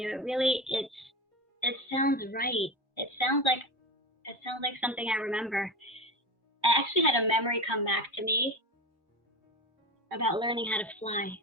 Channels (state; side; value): normal; both; correlation 0.24